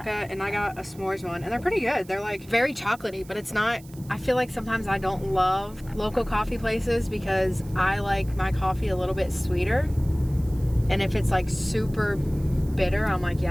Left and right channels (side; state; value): right; noise; hiss, 23 dB below the sound